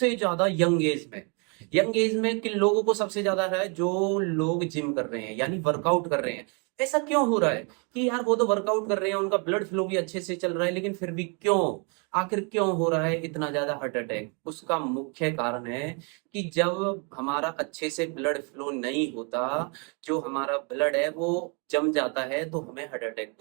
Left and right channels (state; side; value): quieter; left; 35.7 dB